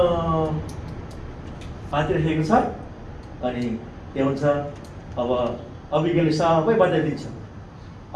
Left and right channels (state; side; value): identical; both; correlation 1.00